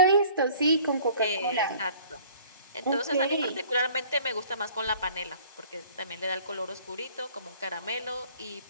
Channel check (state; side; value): inverted; both; correlation -0.52